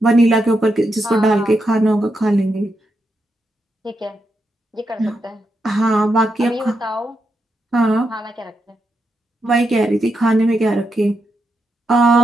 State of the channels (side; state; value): both; normal; correlation 0.84